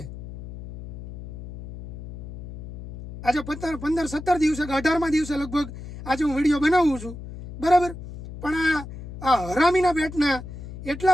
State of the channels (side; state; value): left; noise; hum, 12 dB below the sound